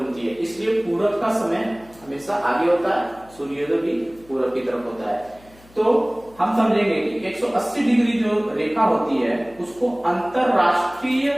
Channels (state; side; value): noise; left; hum, 26 dB below the sound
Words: है, इसलिए पूरब का समय हमेशा आगे होता है, सूर्योदय भी पूरब की तरफ होता है। तो हम समझेंगे कि 180 डिग्री जो रेखा होती है उसको अंतरराष्ट्रीय